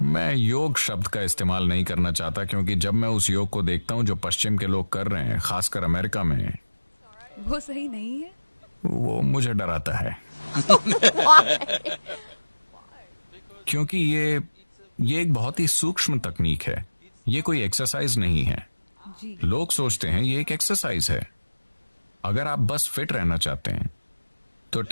मैं योग शब्द का इस्तेमाल नहीं करना चाहता, क्योंकि जब मैं उस योग को देखता हूं जो पश्चिम के लोग कर रहे हैं, खासकर अमेरिका में, वो सही नहीं है। वो मुझे डराता है। क्योंकि ये एक बहुत ही सूक्ष्म तकनीक है। ये कोई एक्सरसाइज नहीं है। जी। लोग सोचते हैं ये एक एक्सरसाइज है। अगर आप बस फिट रहना चाहते हैं तो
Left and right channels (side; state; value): both; inverted; correlation -1.00